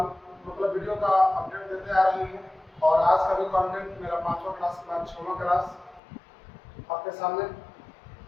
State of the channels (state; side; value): drops out; right; at 6.0 s